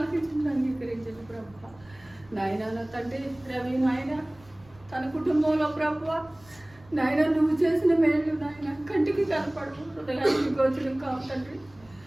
అంగీకరించండి ప్రభా. నాయన నా తండ్రి రవి నాయన తన కుటుంబంలో ప్రభా నాయన నువ్వు చేసిన మేలు నాయన కంటికి కనపడు, హృదయానికి గోచరం కావు తండ్రి.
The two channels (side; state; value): right; noise; rumble, 26 dB below the sound